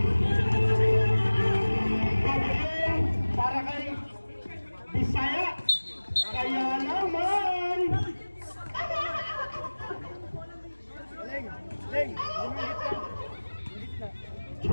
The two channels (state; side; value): inverted; both; correlation -1.00